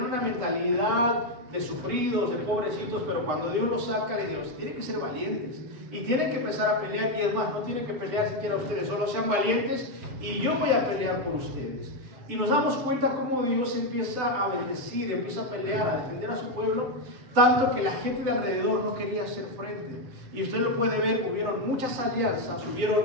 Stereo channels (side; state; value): left; late; 7.9 ms